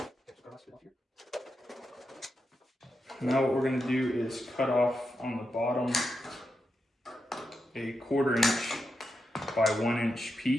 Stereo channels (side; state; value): both; normal; correlation 0.86